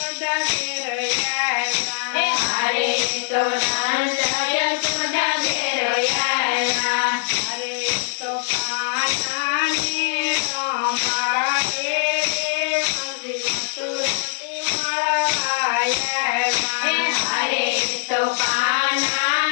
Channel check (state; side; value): silent; right; digital silence